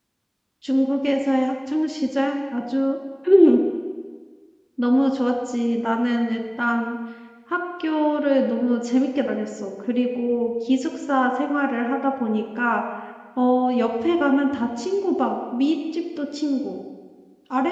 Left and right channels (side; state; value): both; identical; correlation 1.00